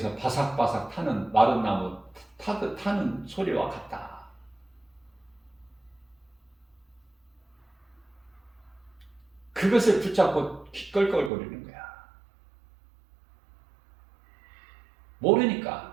바삭바삭 타는 마른 나무 타는 소리와 같다. 그것을 붙잡고 껄껄거리는 거야.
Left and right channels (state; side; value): drops out; left; at 11.3 s